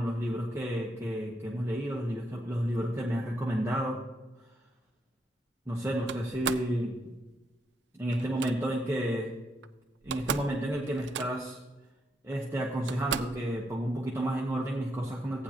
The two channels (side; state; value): both; normal; correlation 0.78